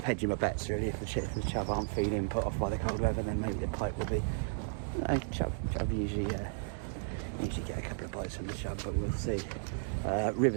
hedging my bets really. If the chub aren't feeling put off by the cold weather, then maybe the pike will be. Chub usually get a couple of bites from the chub, but we'll see.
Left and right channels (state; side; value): silent; left; digital silence